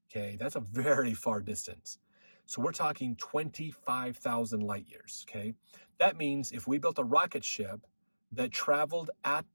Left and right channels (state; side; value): inverted; both; correlation -1.00